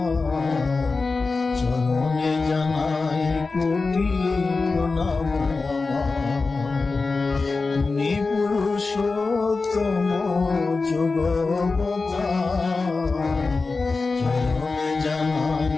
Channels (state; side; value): quieter; right; 4.0 dB